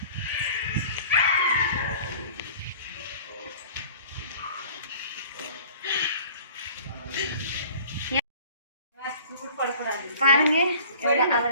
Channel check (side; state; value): both; inverted; correlation -0.48